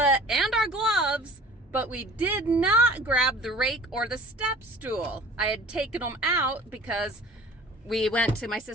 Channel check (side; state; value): both; normal; correlation 0.45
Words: our gloves, but we did not grab the rake or the step stool. I had taken them out because we went to my